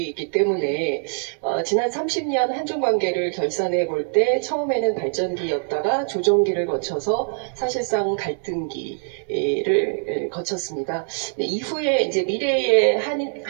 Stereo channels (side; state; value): left; silent; digital silence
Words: 때문에 지난 30년 한중 관계를 결산해 볼 때 처음에는 발전기였다가 조정기를 거쳐서 사실상 갈등기를 거쳤습니다. 이후에 이제 미래의